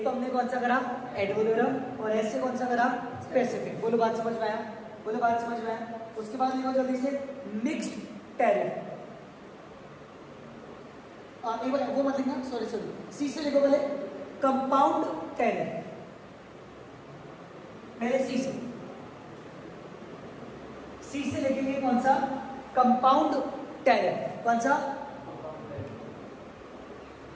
तो हमने कौन सा करा? एड वोलोरम, और एस से कौन सा करा? स्पेसिफिक। बोलो बात समझ में आया? बोलो बात समझ में आया? उसके बाद लिखो जल्दी से मिक्स्ड टैरिफ। एक बार वो मत लिखना, सॉरी सॉरी, सी से लिखो पहले कंपाउंड टैरिफ। पहले सी से लिखेंगे कौन सा? Compound tariff. कौन सा?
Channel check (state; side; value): identical; both; correlation 1.00